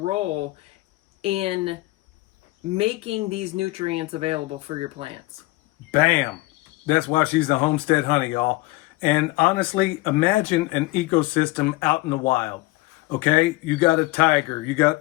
in making these nutrients available for your plants. Bam. That's why she's the homestead honey, y'all. And honestly, imagine an ecosystem out in the wild. Okay, you got a tiger, you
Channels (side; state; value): right; quieter; 20.9 dB